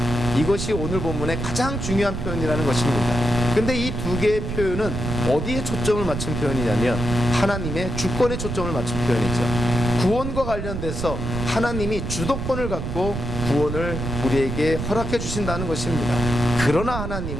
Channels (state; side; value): noise; right; rumble, 4 dB below the sound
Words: 이것이 오늘 본문의 가장 중요한 표현이라는 것입니다. 근데 이 두 개의 표현은 어디에 초점을 맞춘 표현이냐면 하나님의 주권에 초점을 맞춘 표현이죠. 구원과 관련돼서 하나님이 주도권을 갖고 구원을 우리에게 허락해 주신다는 것입니다. 그러나